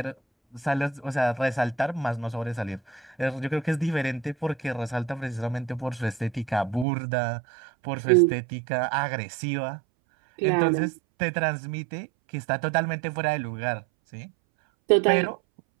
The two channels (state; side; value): drops out; left; at 6.9 s